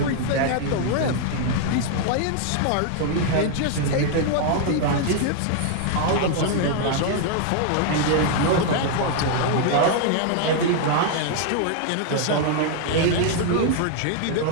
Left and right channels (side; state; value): both; different; correlation 0.00